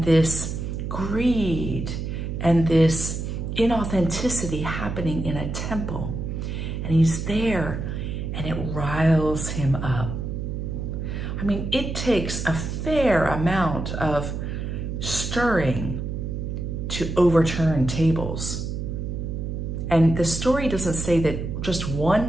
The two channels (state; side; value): noise; right; hum, 4 dB below the sound